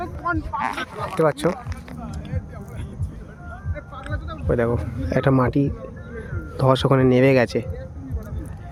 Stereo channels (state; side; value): identical; both; correlation 1.00